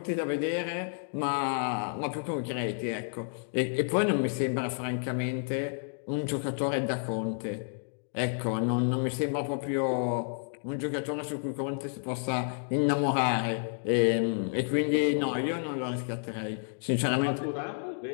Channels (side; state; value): right; silent; digital silence